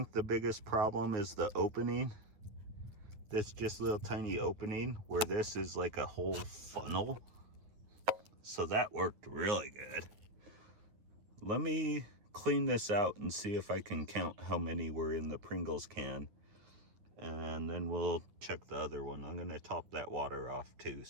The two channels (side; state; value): left; late; 9.8 ms